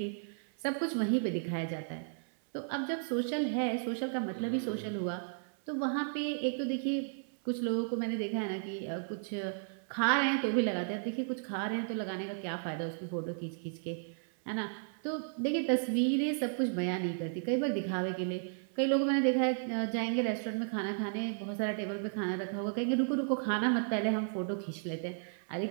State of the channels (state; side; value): silent; left; 55 dB below the other